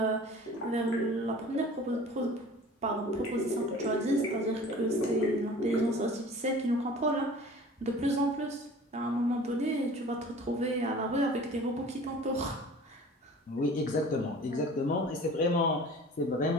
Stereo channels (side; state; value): both; normal; correlation 0.44